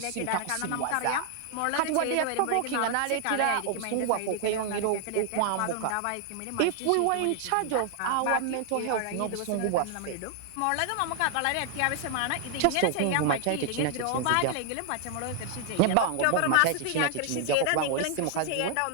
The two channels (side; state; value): both; different; correlation 0.00